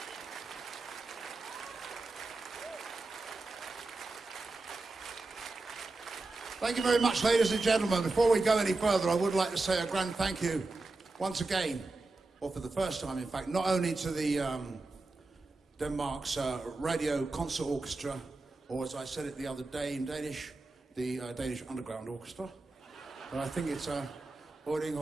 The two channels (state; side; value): quieter; left; 3.3 dB